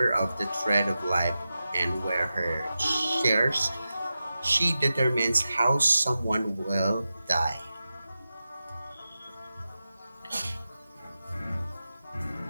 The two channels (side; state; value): both; inverted; correlation -0.92